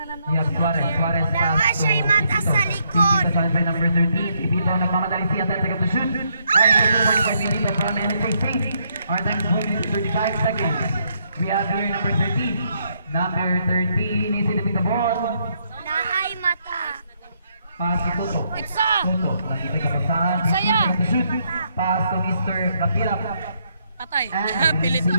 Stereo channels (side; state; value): both; inverted; correlation -0.74